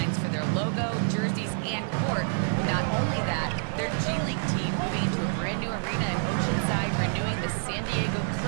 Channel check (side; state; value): left; silent; digital silence